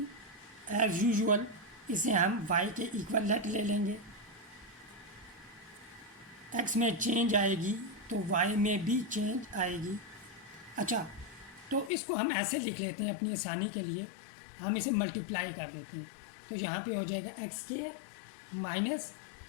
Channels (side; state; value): right; drops out; at 11.9 s